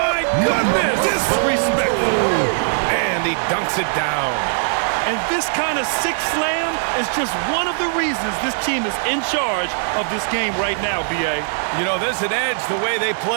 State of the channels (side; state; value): left; silent; digital silence